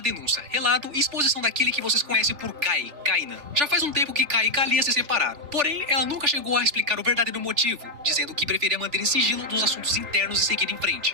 denúncia, relato e exposição daquele que vocês conhecem por Kai, Kainan. Já faz um tempo que Kai e Kalia se separaram. Porém, ela nunca chegou a explicar o verdadeiro motivo, dizendo que preferia manter em sigilo dos assuntos internos e seguir em frente.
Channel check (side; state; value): left; late; 3.4 ms